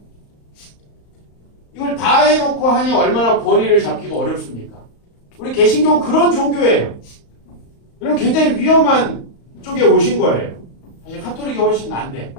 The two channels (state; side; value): late; right; 35 ms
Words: 이걸 다 해놓고 하니 얼마나 권위를 잡기가 어렵습니까? 우리 개신교는 그런 종교예요. 그럼 굉장히 위험한 쪽에 오신 거예요. 사실 카톨릭이 훨씬 난데